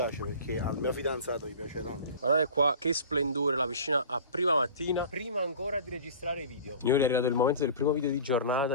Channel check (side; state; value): both; inverted; correlation -0.39